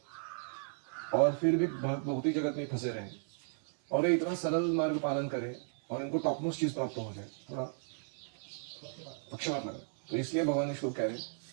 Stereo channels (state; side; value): silent; left; 55 dB below the other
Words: और फिर भी भौतिक जगत में फंसे रहे, और ये इतना सरल मार्ग पालन करे और इनको टॉपमोस्ट चीज प्राप्त हो जाए, थोड़ा पक्षपात लगा। तो इसलिए भगवान ने श्लोक कह रहे